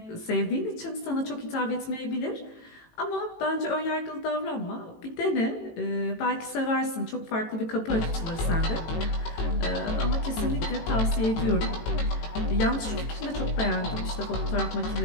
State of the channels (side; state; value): right; late; 18 ms